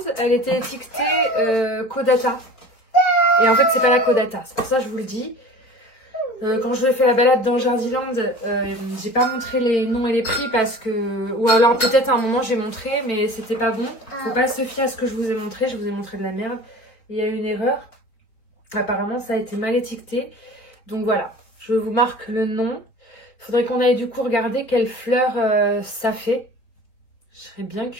elle était étiquetée Caudata. Et en fait, c'est pas la Caudata. C'est pour ça que je vous le dis. Quand je vous ai fait la balade dans Jardiland, j'ai pas montré les noms et les prix parce que... Ou alors peut-être à un moment j'ai montré, mais c'était pas bon. Faut pas se fier à ce que je vous ai montré. Je vous ai montré de la merde. Il y a eu une erreur. Apparemment, ça a été mal étiqueté. Donc voilà, je vous marque le nom. Il faudrait qu'on aille du coup regarder quelle fleur ça fait. Je serais bien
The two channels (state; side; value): late; right; 4.5 ms